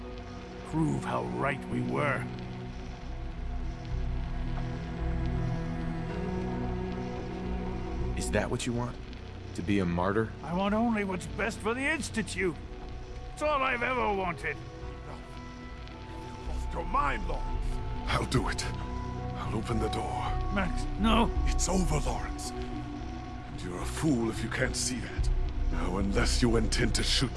Prove how right we were. Is that what you want? To be a martyr? I want only what's best for the Institute. It's all I've ever wanted. Lost your mind, Lawrence. I'll do it. I'll open the door. Max, no. It's over, Lawrence. And you're a fool if you can't see that. Now, unless you intend to shoot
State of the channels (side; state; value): both; identical; correlation 1.00